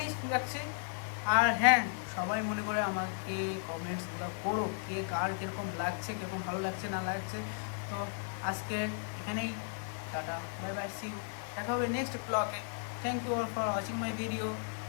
রাখছে। আর হ্যাঁ, সবাই মনে করে আমাকে কমেন্টসগুলো করো, কে কার কীরকম লাগছে, কীরকম ভালো লাগছে না লাগছে। তো আজকে এখানেই tata, bye bye, see you, দেখা হবে নেক্সট ব্লগে। Thank you for watching my video,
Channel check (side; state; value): right; silent; 54 dB below the other